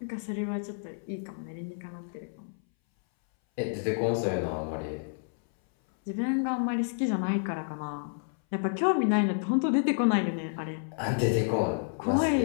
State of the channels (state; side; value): silent; right; 58 dB below the other